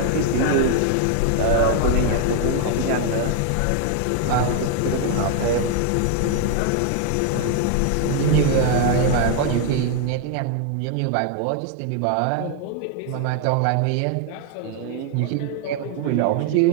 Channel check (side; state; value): both; different; correlation 0.00